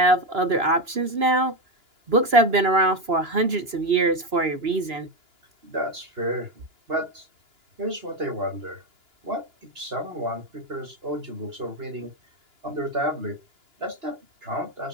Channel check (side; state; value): left; late; 2.9 ms